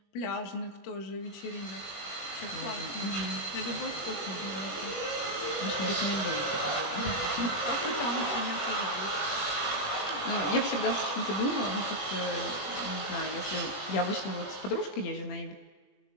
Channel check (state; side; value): late; right; 20 ms